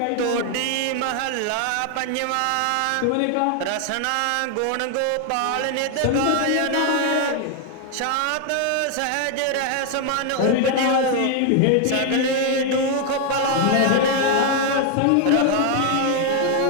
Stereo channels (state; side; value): different; both; correlation 0.00